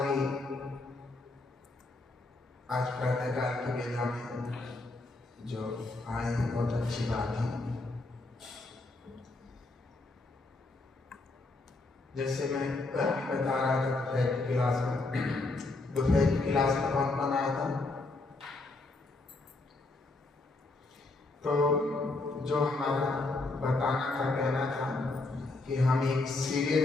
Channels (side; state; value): right; quieter; 3.2 dB